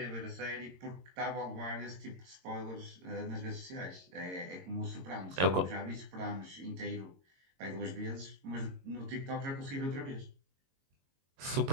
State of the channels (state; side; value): late; left; 22 ms